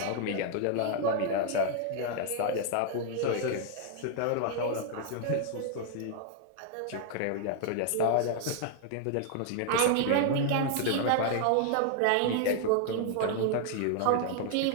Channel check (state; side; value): different; both; correlation 0.00